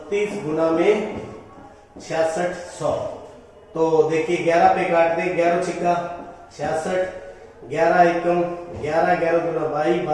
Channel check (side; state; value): both; identical; correlation 1.00